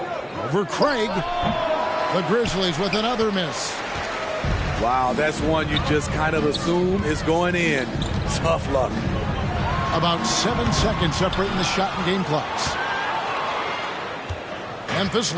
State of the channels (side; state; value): both; identical; correlation 1.00